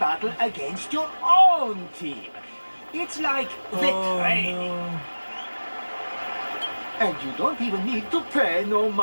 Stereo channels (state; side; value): inverted; both; correlation -1.00